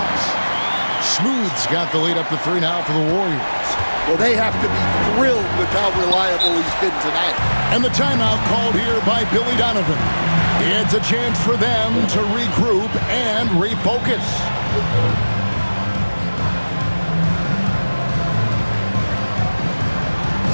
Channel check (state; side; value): inverted; both; correlation -1.00